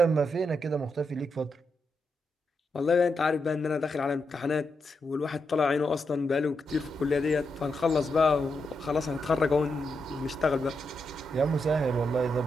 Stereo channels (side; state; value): both; normal; correlation 0.84